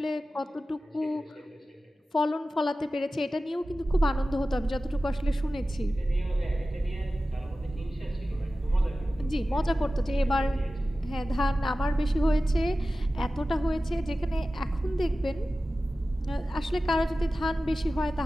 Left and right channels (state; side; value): normal; both; correlation 0.95